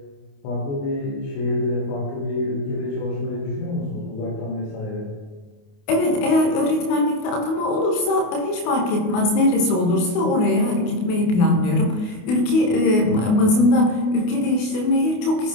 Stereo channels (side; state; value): right; late; 28 ms